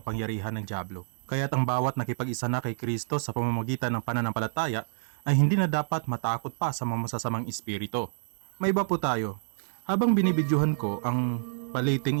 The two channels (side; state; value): left; silent; 59 dB below the other